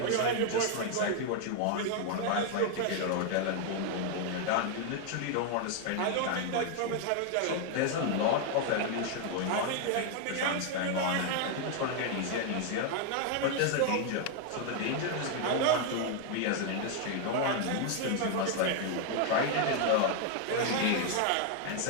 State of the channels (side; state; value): both; different; correlation 0.00